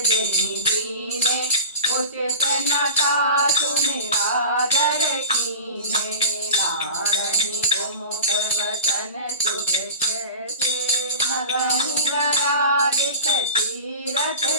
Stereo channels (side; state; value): both; inverted; correlation -0.32